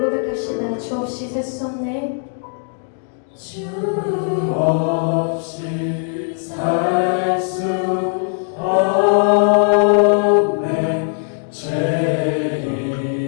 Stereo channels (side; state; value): right; silent; 66 dB below the other